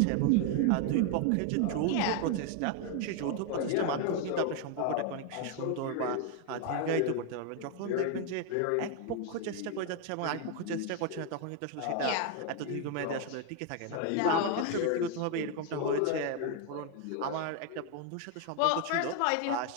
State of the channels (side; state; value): both; different; correlation 0.01